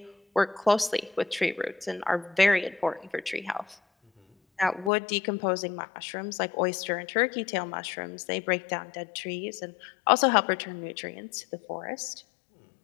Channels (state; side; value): drops out; right; at 4.9 s